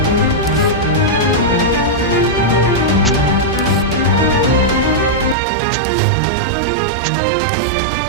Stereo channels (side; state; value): left; drops out; at 5.4 s